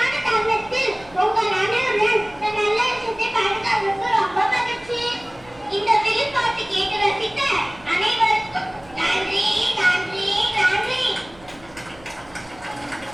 தருணத்தில் உங்கள் அனைவருடன் இந்த நல்ல விஷயத்தை பகிர்ந்ததற்கு ரொம்ப மகிழ்ச்சி. இந்த வெளிப்பாட்டு கேட்டு ரசித்த அனைவருக்கும் நன்றி நன்றி நன்றி.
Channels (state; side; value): noise; right; hum, 24 dB below the sound